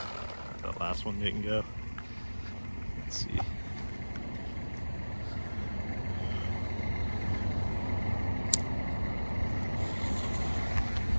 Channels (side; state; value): both; inverted; correlation -1.00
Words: That last one didn't go. Let's see.